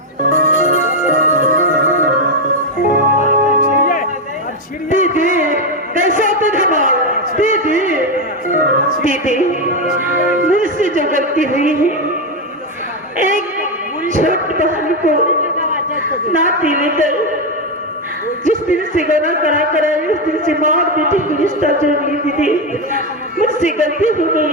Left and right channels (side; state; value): both; normal; correlation 0.08